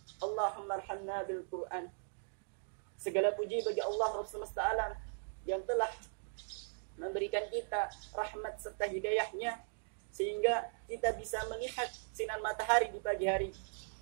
Allahumma arhamna bil Quran. Segala puji bagi Allah Rabb semesta alam yang telah memberikan kita rahmat serta hidayahnya sehingga kita bisa melihat sinar matahari di pagi hari,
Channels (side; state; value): left; silent; digital silence